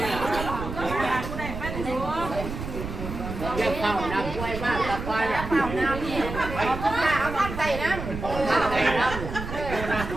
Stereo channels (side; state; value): right; noise; rumble, 7 dB below the sound